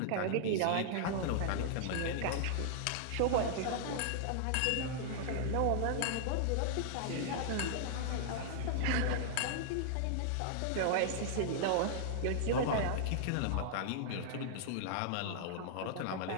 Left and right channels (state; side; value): different; both; correlation -0.01